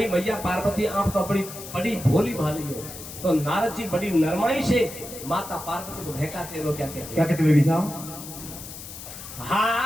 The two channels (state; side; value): noise; left; hiss, 12 dB below the sound